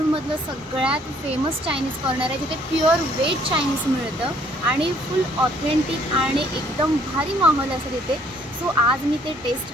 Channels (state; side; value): normal; both; correlation 0.62